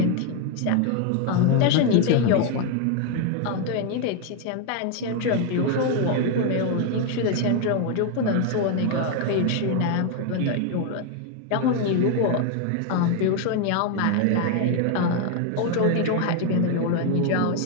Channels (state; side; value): different; both; correlation 0.01